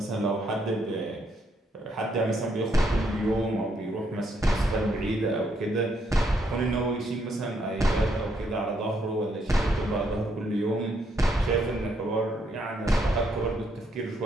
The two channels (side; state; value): both; normal; correlation 0.74